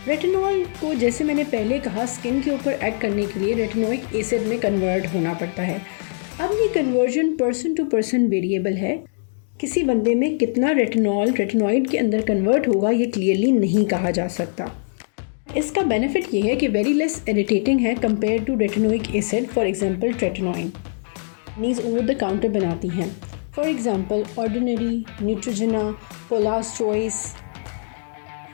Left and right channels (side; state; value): right; silent; digital silence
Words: रेटिनॉल को, जैसे मैंने पहले कहा, स्किन के ऊपर एक्ट करने के लिए रेटिनोइक एसिड में कन्वर्ट होना पड़ता है। अब ये conversion person to person variable है। किसी बंदे में कितना रेटिनॉल रेटिनॉइड के अंदर कन्वर्ट होगा ये क्लियरली नहीं कहा जा सकता। इसका बेनिफिट ये है कि वेरी लेस इरिटेटिंग है compare to retinoic acid. For example tretinoin नीज ओवर द काउंटर बनाती हैं, for example ordinary, Neutrogena, Paula's choice.